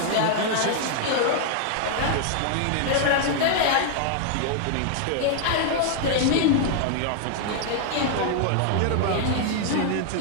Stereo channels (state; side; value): different; both; correlation 0.00